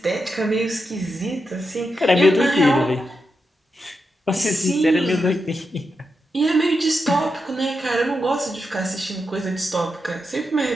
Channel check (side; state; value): both; normal; correlation 0.87